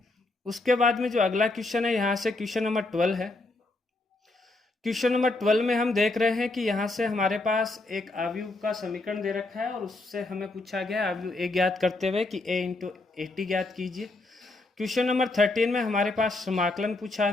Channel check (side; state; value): right; quieter; 3.0 dB